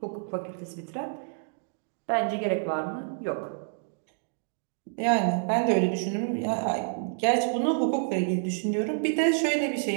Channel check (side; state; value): left; silent; digital silence